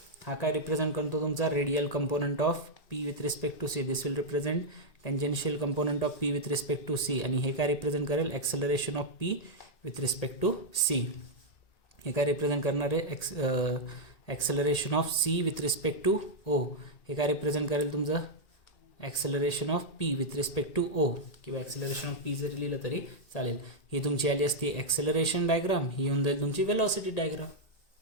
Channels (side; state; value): right; late; 1.8 ms